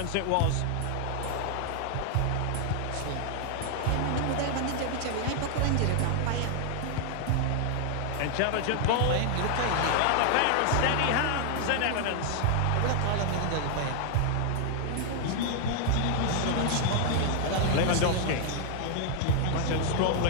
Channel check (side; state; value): both; different; correlation 0.00